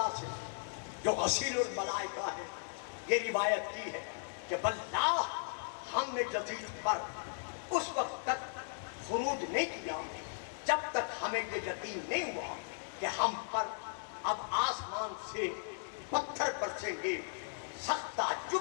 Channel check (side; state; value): right; silent; digital silence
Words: سے جو غسیل الملائکہ ہے یہ روایت کی ہے کہ واللہ ہم نے یزید پر اس وقت تک خروج نہیں کیا جب تک ہمیں یہ یقین نہیں ہوا کہ ہم پر اب آسمان سے پتھر برسیں گے. سخت